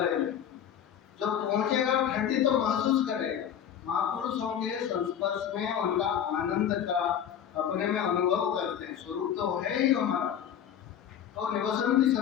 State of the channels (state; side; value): quieter; right; 9.3 dB